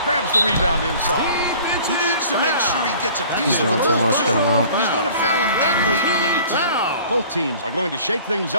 grabs the rebound inside. He needs to make sure he gets a piece He's of the doing too ball, much, too. get him out. If he's going to foul him that late on an attempt. Both teams are going to shake things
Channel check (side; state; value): both; inverted; correlation -0.49